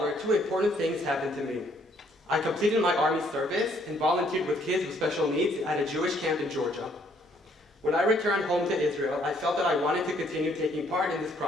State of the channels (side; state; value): both; normal; correlation 0.66